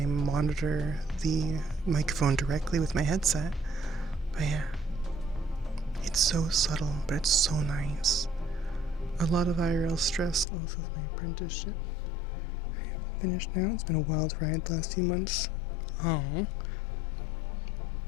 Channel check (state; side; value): drops out; right; at 10.5 s